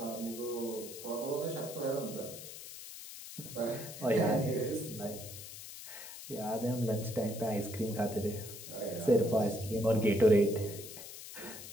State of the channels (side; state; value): left; noise; hiss, 12 dB below the sound